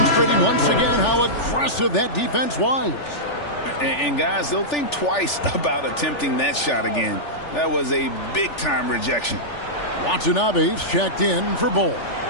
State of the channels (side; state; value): right; late; 3.4 ms